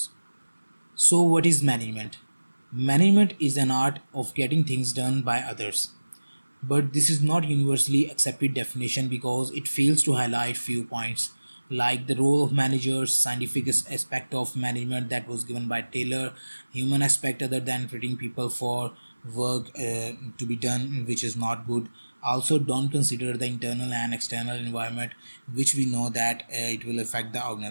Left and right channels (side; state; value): both; inverted; correlation -1.00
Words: So what is management? Management is an art of getting things done by others. But this is not universally accepted definition because it fails to highlight few points like the role of managers, scientific aspect of management that was given by Taylor, human aspect other than treating people for work to be done which is not good. Also don't consider the internal and external environment which we know that it will affect the